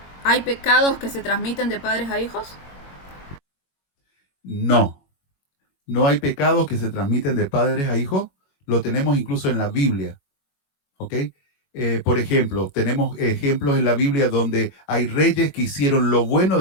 ¿Hay pecados que se transmiten de padres a hijos? No hay pecados que se transmiten de padres a hijos. Lo tenemos incluso en la Biblia. ¿Ok? Por ejemplo, tenemos ejemplos en la Biblia donde hay reyes que hicieron lo bueno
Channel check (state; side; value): late; right; 22 ms